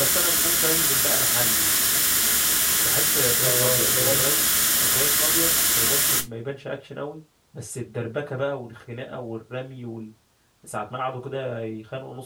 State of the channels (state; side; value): identical; both; correlation 1.00